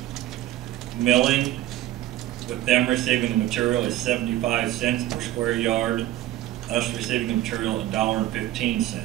Milling, with them receiving the material, is 75 cents per square yard. Us receiving the material,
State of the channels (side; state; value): left; quieter; 14.3 dB